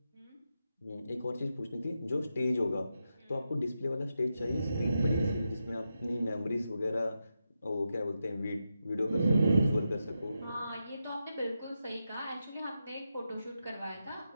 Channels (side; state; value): both; inverted; correlation -0.87